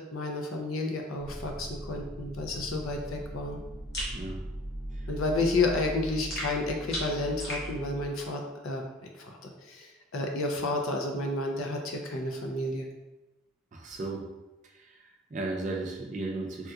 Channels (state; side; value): normal; both; correlation 0.45